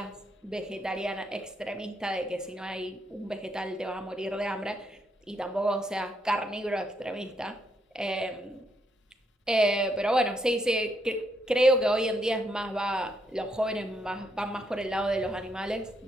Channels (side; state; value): both; normal; correlation 0.76